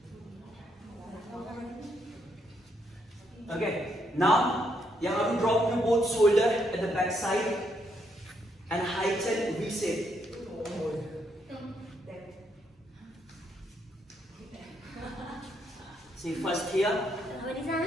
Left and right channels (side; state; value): both; normal; correlation 0.75